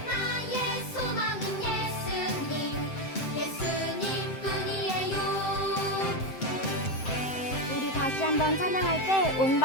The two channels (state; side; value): late; right; 7.7 ms